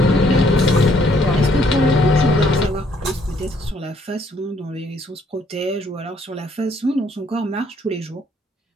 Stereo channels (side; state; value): both; normal; correlation 0.66